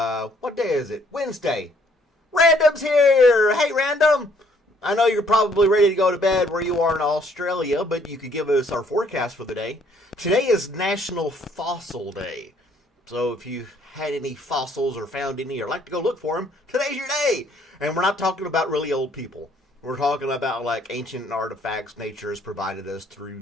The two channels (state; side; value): normal; both; correlation 0.64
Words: what day is it? Wednesday. Random's here! Hey, Random! I know you're probably ready to go to bed where you are in Australia, but you could give us our forecast for the day. Today is National Fossil Day. So if you had any fossils or found any or like to go look for them, today's your day. And we're not talking about really old people. We're talking about like ancient artifacts nature has provided us through